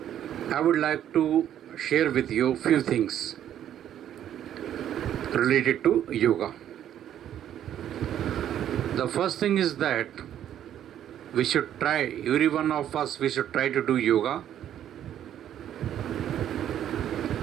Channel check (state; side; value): quieter; left; 10.7 dB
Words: I would like to share with you few things related to yoga. The first thing is that we should try, every one of us, we should try to do yoga.